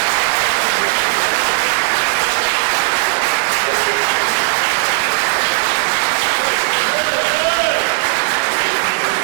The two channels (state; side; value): silent; left; digital silence